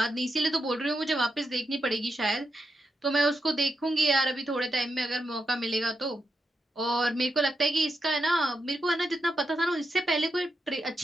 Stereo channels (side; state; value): both; normal; correlation 0.85